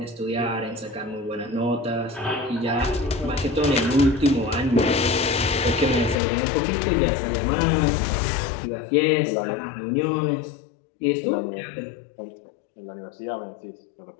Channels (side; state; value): right; drops out; at 6.2 s